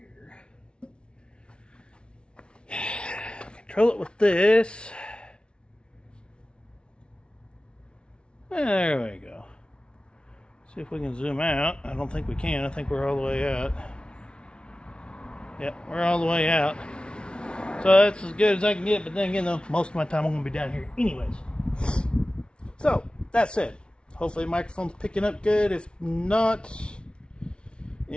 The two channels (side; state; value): right; late; 0.057 ms